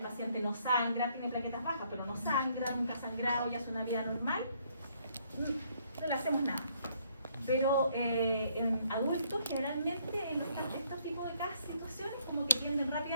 no sangra, tiene plaquetas bajas, pero no sangra, nunca ha sangrado y hace una vida normal, no le hacemos nada. Pero en adultos, generalmente, en estos tipos de situaciones, como que tienden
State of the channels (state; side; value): inverted; both; correlation -0.67